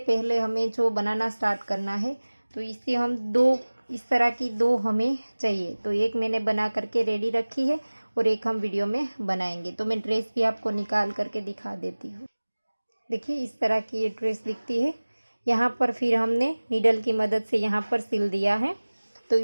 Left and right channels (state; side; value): inverted; both; correlation -1.00